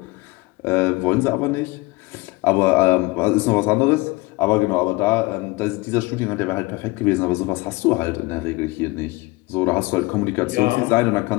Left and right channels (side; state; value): right; quieter; 23.0 dB